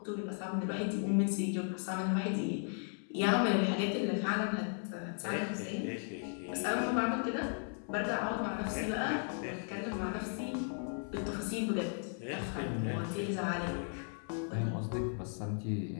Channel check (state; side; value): silent; right; 54 dB below the other